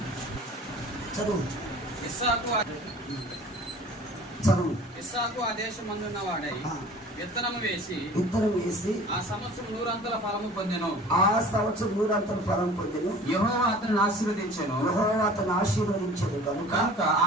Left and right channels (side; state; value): both; normal; correlation 0.45